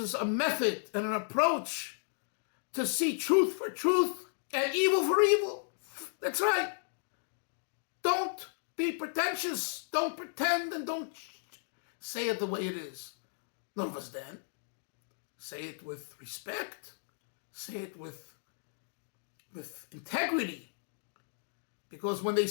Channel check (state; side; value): silent; right; digital silence